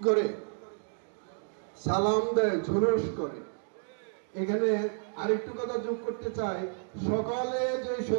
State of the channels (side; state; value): left; silent; digital silence